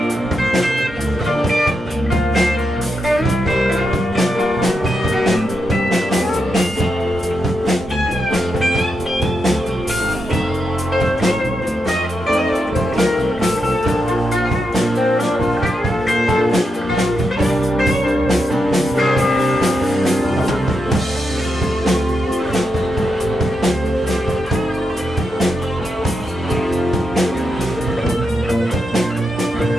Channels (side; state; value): both; normal; correlation 0.85